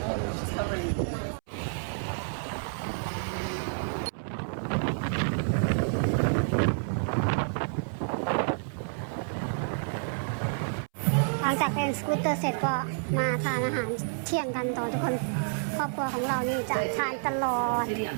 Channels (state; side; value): silent; left; 58 dB below the other